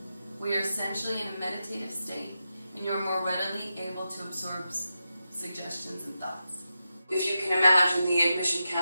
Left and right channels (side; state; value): both; inverted; correlation -0.89